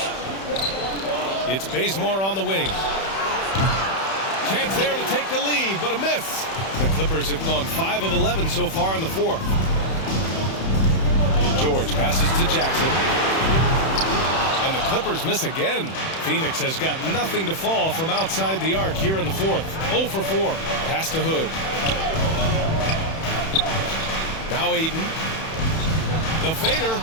It's Bazemore on the wing. Chance there to take the lead, but a miss. The Clippers have gone 5 of 11 so far in the fourth. George passes to Jackson. And the Clippers miss again. Phoenix has got nothing to fall from outside the arc here in the fourth. 0 for 4. Pass to Hood. Now Ayton. The fader.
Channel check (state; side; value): late; right; 31 ms